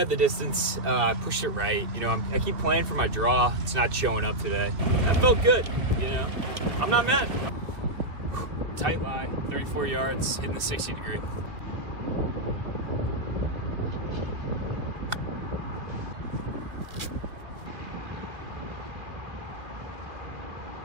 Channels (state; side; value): late; left; 2.5 ms